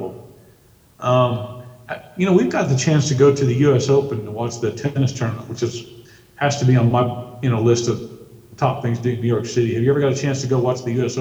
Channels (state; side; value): identical; both; correlation 1.00